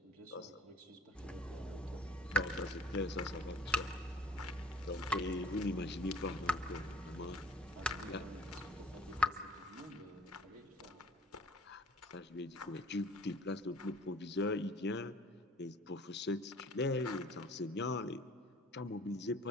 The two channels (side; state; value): both; normal; correlation 0.51